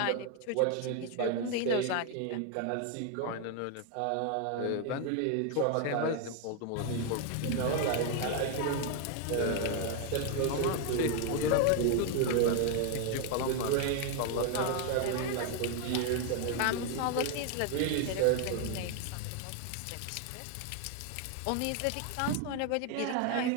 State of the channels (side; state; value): both; different; correlation 0.00